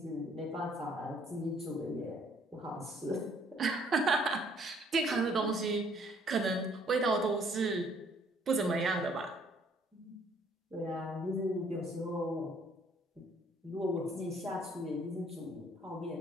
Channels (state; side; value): normal; both; correlation 0.62